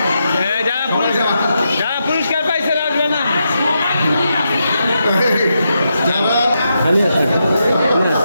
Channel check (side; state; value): both; inverted; correlation -0.84